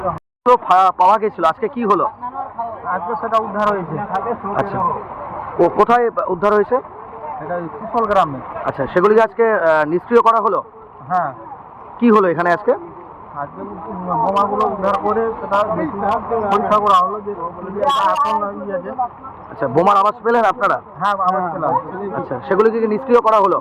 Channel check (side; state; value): both; identical; correlation 1.00